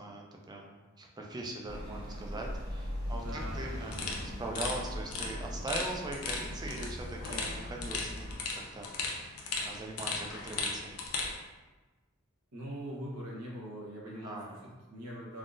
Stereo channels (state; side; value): normal; both; correlation 0.36